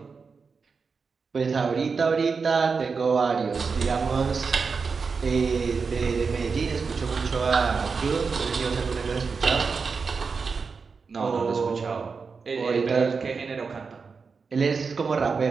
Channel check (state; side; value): quieter; left; 5.1 dB